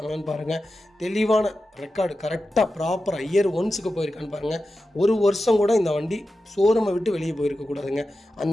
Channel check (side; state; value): both; normal; correlation 0.92